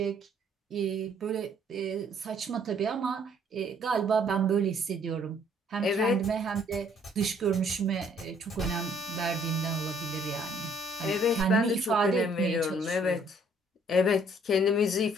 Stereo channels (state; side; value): normal; both; correlation 0.62